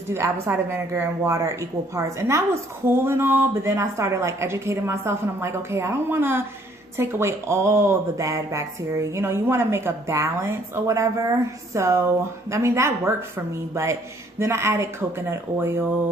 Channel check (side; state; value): both; normal; correlation 0.62